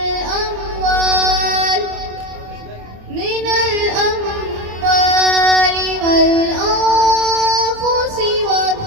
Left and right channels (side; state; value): left; late; 27 ms